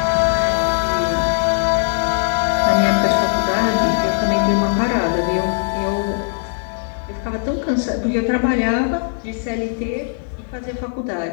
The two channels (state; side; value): silent; right; digital silence